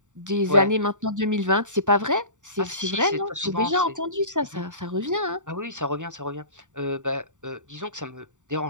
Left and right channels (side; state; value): left; late; 0.86 ms